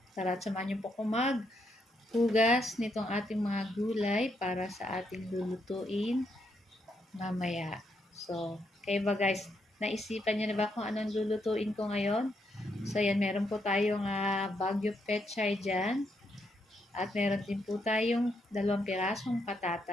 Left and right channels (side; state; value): both; normal; correlation 0.78